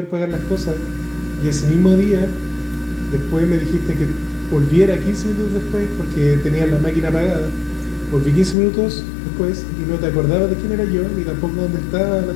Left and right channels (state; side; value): drops out; right; at 8.6 s